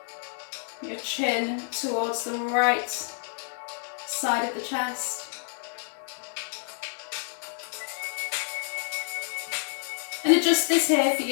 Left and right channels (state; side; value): silent; right; digital silence